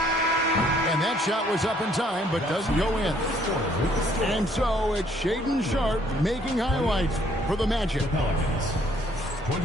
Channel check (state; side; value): normal; both; correlation 0.64